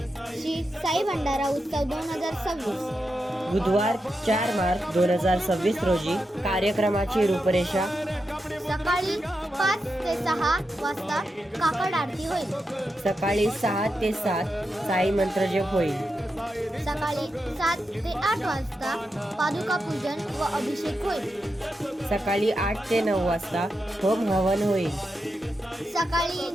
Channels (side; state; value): both; normal; correlation 0.87